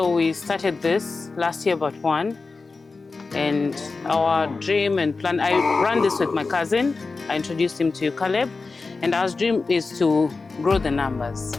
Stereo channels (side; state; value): right; quieter; 4.1 dB